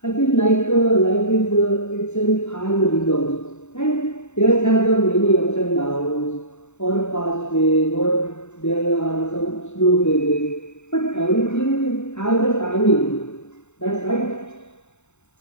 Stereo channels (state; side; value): late; right; 0.82 ms